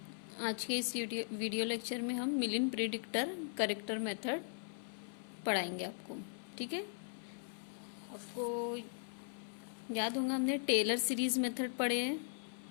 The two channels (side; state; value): right; silent; 52 dB below the other